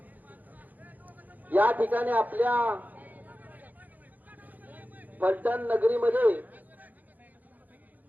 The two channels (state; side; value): late; left; 0.082 ms